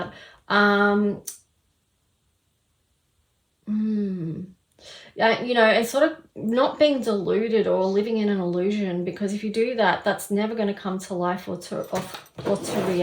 You know, and sort of not being deluded or living in an illusion, because if you do that, that's never going to come to life or to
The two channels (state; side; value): identical; both; correlation 1.00